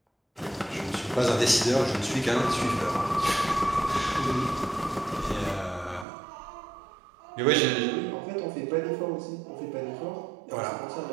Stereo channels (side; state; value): left; drops out; at 6.1 s